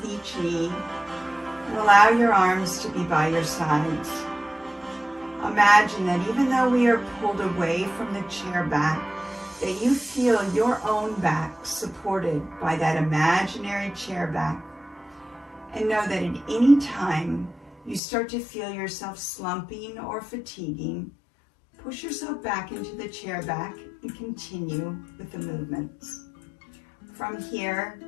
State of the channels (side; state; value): right; drops out; at 18.0 s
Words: each knee, and allow your arms to be by your sides. Imagine that even though we are pulled away from the chair back, that you feel your own back supported by that imaginary chair back. And know that at any time you start to feel yourself slumping or fatiguing, Push yourself back into the chair back and continue with the movements. From here,